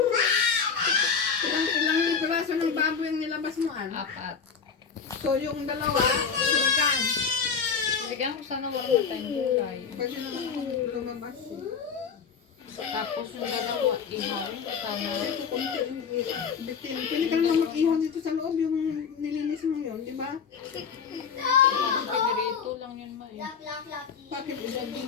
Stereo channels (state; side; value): quieter; right; 6.3 dB